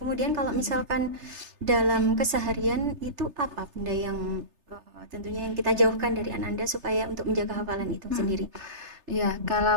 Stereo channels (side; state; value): left; late; 3.3 ms